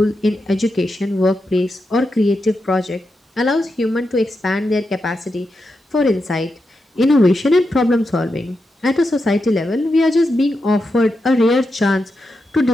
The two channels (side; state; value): both; normal; correlation 0.87